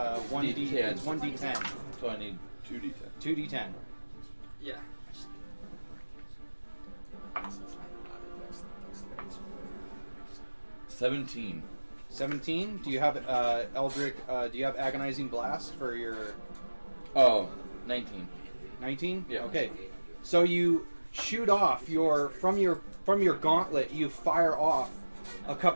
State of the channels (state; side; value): inverted; both; correlation -1.00